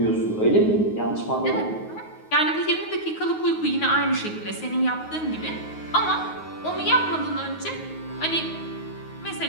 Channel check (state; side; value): late; right; 9.4 ms